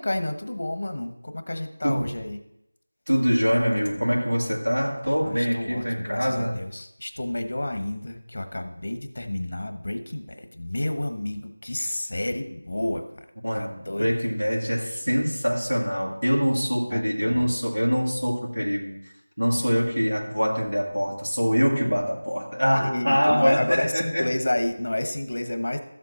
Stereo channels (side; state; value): both; inverted; correlation -0.99